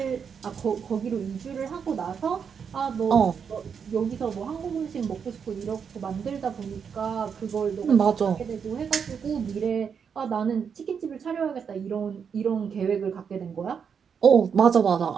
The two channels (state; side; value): quieter; left; 6.8 dB